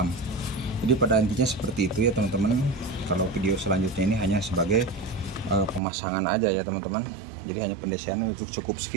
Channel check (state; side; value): drops out; left; at 5.8 s